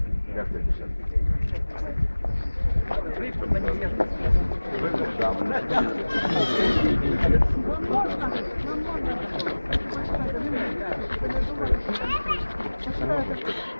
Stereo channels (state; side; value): inverted; both; correlation -1.00